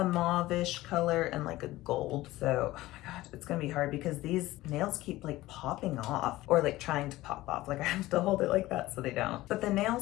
mauve-ish color and like a gold. So, oh my god, it's gonna be hard because these nails keep like popping off or like trying to pop off. Like I have to hold it like that so they don't. But the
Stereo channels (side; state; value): right; quieter; 17.3 dB